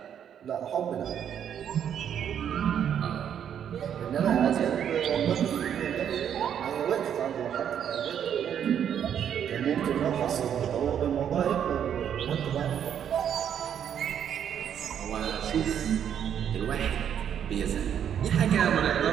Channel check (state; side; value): quieter; left; 9.0 dB